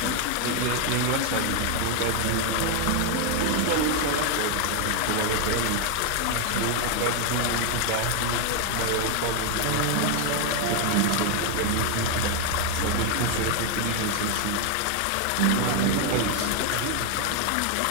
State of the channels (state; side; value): different; both; correlation 0.01